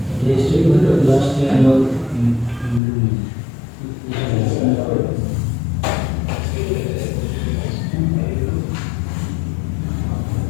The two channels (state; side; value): drops out; right; at 2.8 s